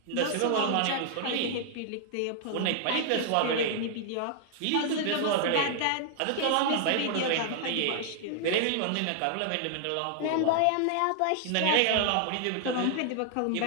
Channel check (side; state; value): both; different; correlation 0.00